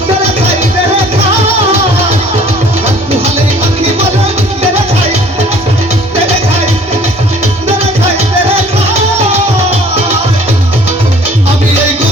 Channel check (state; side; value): normal; both; correlation 0.53